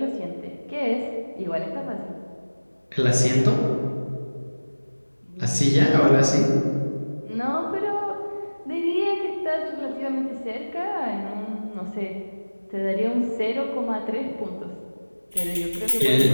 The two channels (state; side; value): inverted; both; correlation -1.00